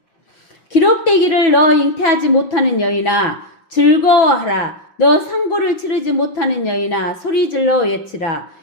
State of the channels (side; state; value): right; late; 6.0 ms